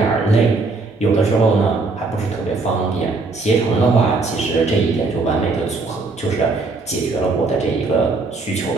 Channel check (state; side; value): quieter; left; 3.7 dB